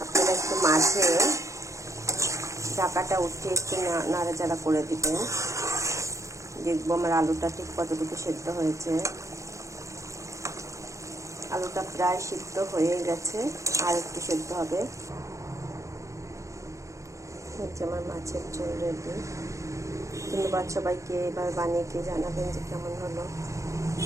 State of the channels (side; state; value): left; late; 0.15 ms